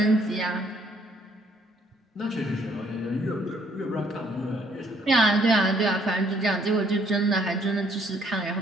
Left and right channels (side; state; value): both; normal; correlation 0.66